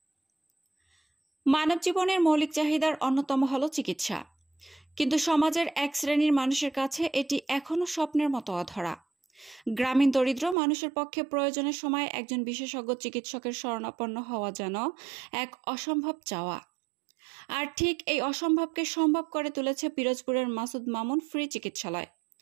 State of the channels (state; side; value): drops out; left; at 10.6 s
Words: মানব জীবনের মৌলিক চাহিদার অন্যতম হল চিকিৎসা, কিন্তু সমাজের এক শ্রেণীর মানুষের কাছে এটি এখনো স্বপ্নের মতো অধরা। গ্রামীণ দরিদ্র মানুষের পক্ষে প্রয়োজনের সময় একজন বিশেষজ্ঞ চিকিৎসকের শরণাপন্ন হওয়া যেন এক অসম্ভব চাওয়া। আর ঠিক এই অসম্ভবকে সম্ভব করে তুলেছে পিরোজপুরের মাসুদ মামুন ফ্রি চিকিৎসালয়।